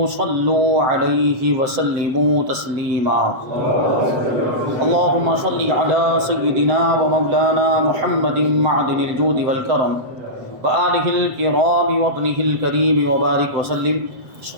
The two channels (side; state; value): left; late; 7.8 ms